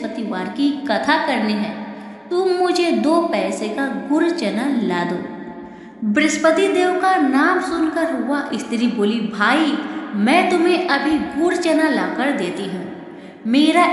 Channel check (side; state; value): both; identical; correlation 1.00